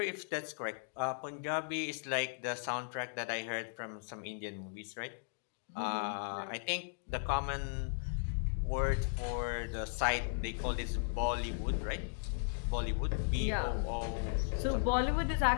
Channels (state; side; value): silent; right; digital silence